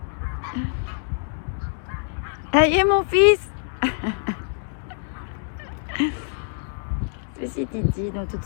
Allez, mon fils. Ceci Titi dans toute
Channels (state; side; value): silent; right; digital silence